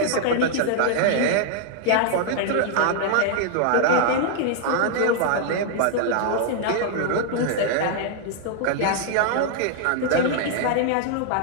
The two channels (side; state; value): both; different; correlation -0.01